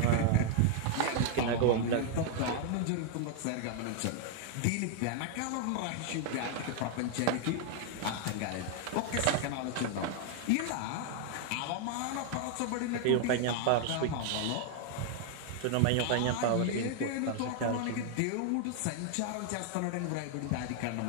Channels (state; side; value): different; both; correlation 0.00